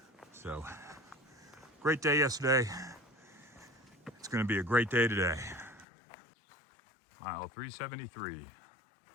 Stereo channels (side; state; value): right; drops out; at 5.9 s